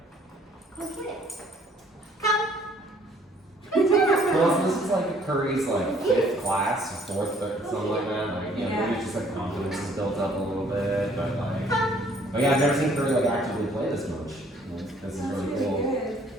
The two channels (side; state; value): both; normal; correlation 0.60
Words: Go get it. Come. Well, this is like Curry's like 5th class, 4th, something like that. Like, yeah, maybe it's just like confidence is built up a little bit, but like, oh yeah, I've never seen Curry like actively play this much. Like, this is really cool. Good.